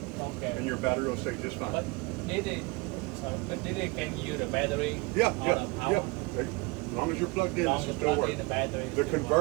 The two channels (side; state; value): left; quieter; 26.8 dB